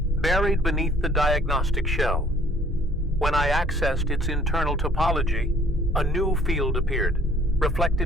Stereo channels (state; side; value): normal; both; correlation 0.58